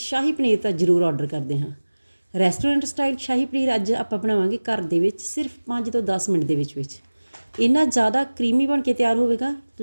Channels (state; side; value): inverted; both; correlation -1.00